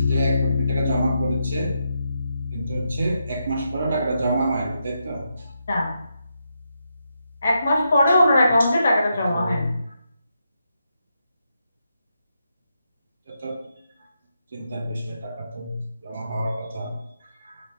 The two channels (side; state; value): both; inverted; correlation -0.83